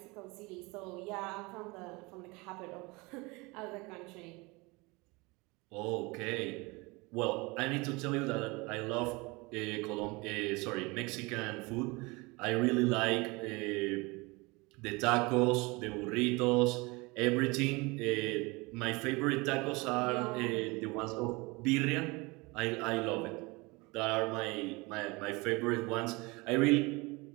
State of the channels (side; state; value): left; quieter; 25.3 dB